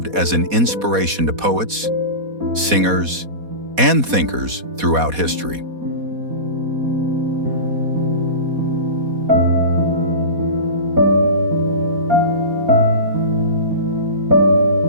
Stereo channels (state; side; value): late; left; 4.2 ms